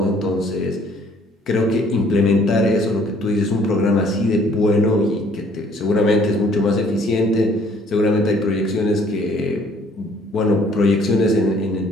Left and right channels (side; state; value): both; normal; correlation 0.60